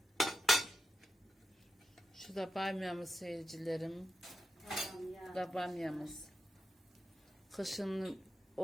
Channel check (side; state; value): both; normal; correlation 0.88